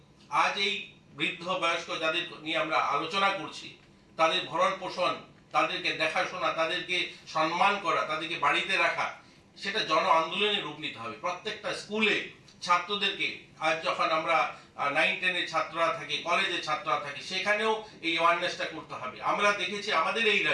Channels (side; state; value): both; identical; correlation 1.00